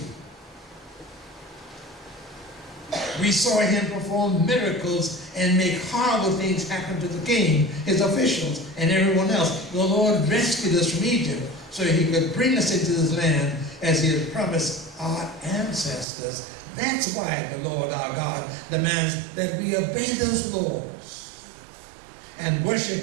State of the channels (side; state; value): left; drops out; at 16.1 s